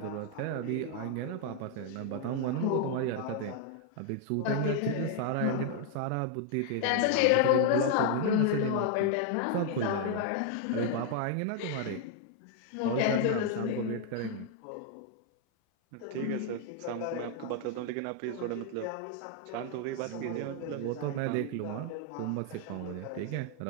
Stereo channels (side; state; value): both; different; correlation 0.00